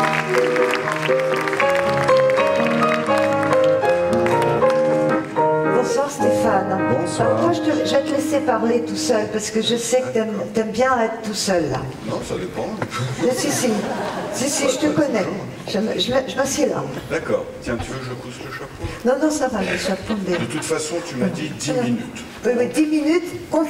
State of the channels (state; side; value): identical; both; correlation 1.00